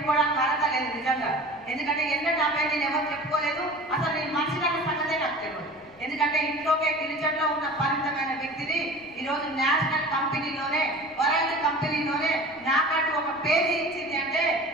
అర్హత లేదు నిజంగా. ఎందుకంటే నా పేరు నేను ఎవరు చెప్పుకోలేదు. అసలు నేను మనిషి అన్న సంగతే నాకు తెలియదు. ఎందుకంటే ఇంట్లోకే గిరిజనలో ఉన్న పరిమితమైన వ్యక్తిని ఈరోజు నేషనల్ కంపెనీలోనే, వరల్డ్ కంపెనీలోనే నాకంటూ ఒక పేరు ఇచ్చింది అంటే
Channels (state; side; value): noise; left; rumble, 28 dB below the sound